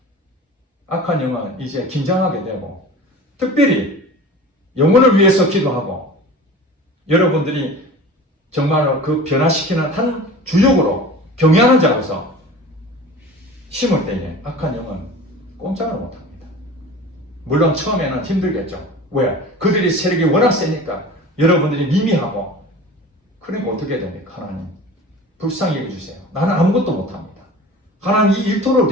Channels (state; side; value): normal; both; correlation 0.38